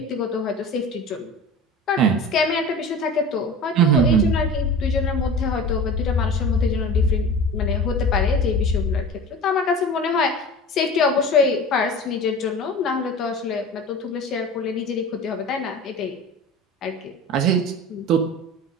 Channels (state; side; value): normal; both; correlation 0.35